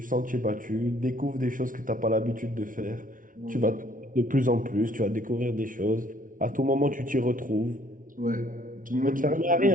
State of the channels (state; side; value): late; left; 0.39 ms